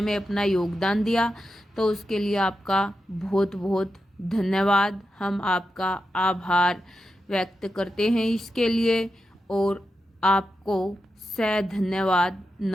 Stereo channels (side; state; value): both; normal; correlation 0.89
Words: में अपना योगदान दिया, तो उसके लिए आपका बहुत बहुत धन्यवाद। हम आपका आभार व्यक्त करते हैं इसके लिए और आपको सह धन्यवाद।